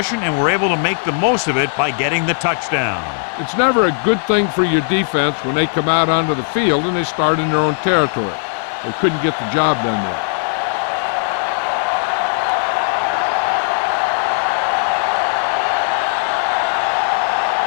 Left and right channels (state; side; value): silent; right; 68 dB below the other